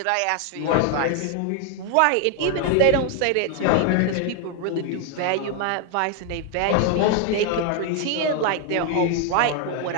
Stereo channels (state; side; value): different; both; correlation 0.01